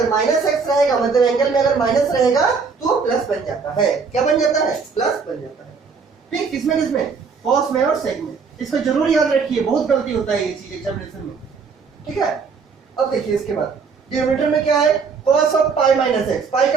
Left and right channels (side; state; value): left; quieter; 5.3 dB